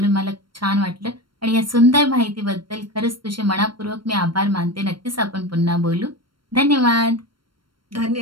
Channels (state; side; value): late; left; 0.73 ms